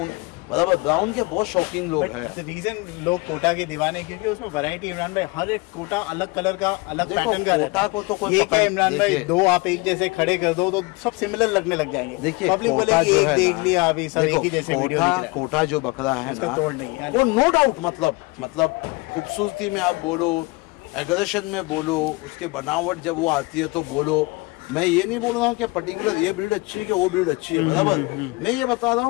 बराबर, ब्राउन के बहुत शौकीन लोग हैं। रीजन लोग कोटा के दीवाने क्योंकि उसमें वैरायटी इमरान भाई, हर एक कोटा अलग कलर का, अलग पैटर्न का रहता है। को तो कोई क्या इमरान भाई, दो आप एक जैसे खड़े कर दो तो सब सिमिलर लगने लग जाएंगे। देखिए पब्लिक बोलेगी एक देख लिया अभी सब एक ही जैसे वीडियो दिख रहा है। कोटा जो बकरा है ना, तोड़ नहीं है वो नो डाउट, मतलब खूबसूरती में आप बोलो, एग्रेशन में बोलो, उसके बनावट जब वो आती है तो बोलो, मैं ये नहीं बोल रहा हूँ कि पर्टिकुलर ये ब्रीड अच्छी है कि वो ब्रीड अच्छी है, बराबर, मैं ये बता रहा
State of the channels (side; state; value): right; quieter; 24.9 dB